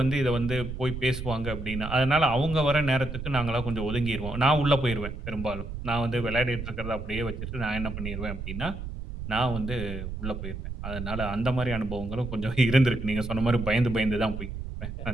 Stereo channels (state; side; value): noise; right; rumble, 7 dB below the sound